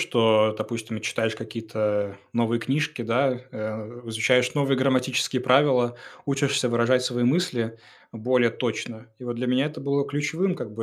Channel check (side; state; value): both; identical; correlation 1.00